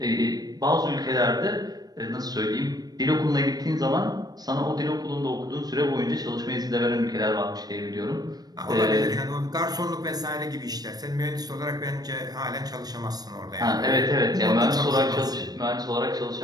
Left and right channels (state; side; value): late; left; 0.19 ms